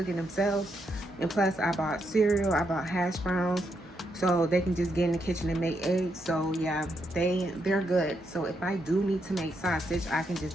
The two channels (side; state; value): both; normal; correlation 0.80